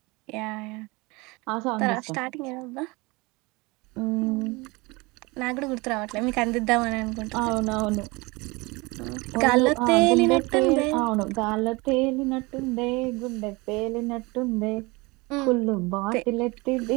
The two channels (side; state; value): left; quieter; 24.9 dB